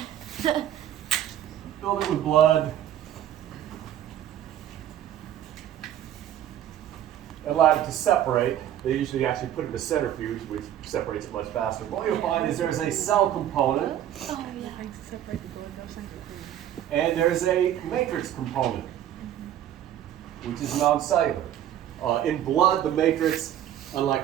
with blood, and allowed it to separate. They usually actually put it in a centrifuge, which separates it much faster. What you'll find is there's a cell component, and there's a matrix component, which is non-cellular. In blood, the matrix,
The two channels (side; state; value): left; quieter; 11.4 dB